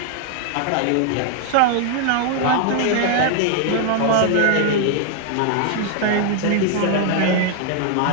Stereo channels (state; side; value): different; both; correlation 0.00